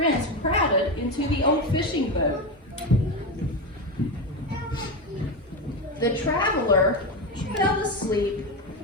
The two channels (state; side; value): normal; both; correlation 0.15